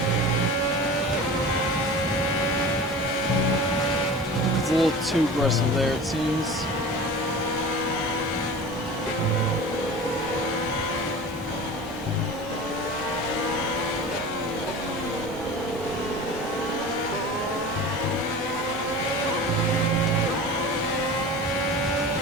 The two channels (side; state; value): both; normal; correlation 0.36